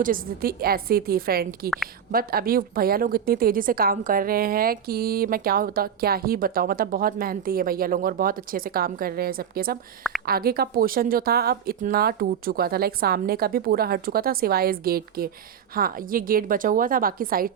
स्थिति ऐसी थी फ्रेंड की, बट अभी भैया लोग इतनी तेज़ी से काम कर रहे हैं कि मैं क्या ही बताऊँ। मतलब बहुत मेहनती है भैया लोग और बहुत अच्छे से काम कर रहे हैं सबके सब। आगे का पोर्शन जो था अब इतना टूट चुका था, लाइक सामने का भी पूरा हट चुका था सिवाय इस गेट के। हाँ, ये गेट बचा हुआ था, बाकी साइड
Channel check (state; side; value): quieter; left; 8.3 dB